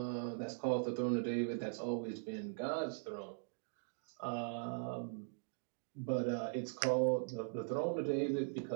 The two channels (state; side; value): silent; left; digital silence